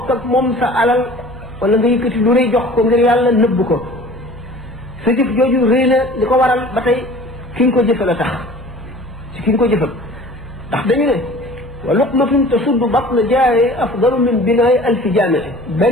ak moom sa alal wala nga yëkkati lu rëy jox ko ngir yàlla nëbb ko sa jëf jooju rëy na li ko waral ba tey ki nga ko jëfal a tax ci ki nga ko jëfal ndax dañu ne wa luqmatun tasuddu batna jaaye afdalu min binaay alfi jaamee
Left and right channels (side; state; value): both; normal; correlation 0.46